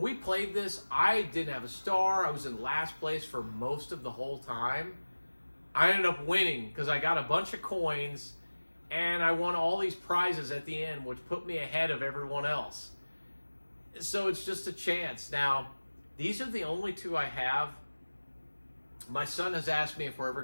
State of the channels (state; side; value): inverted; both; correlation -1.00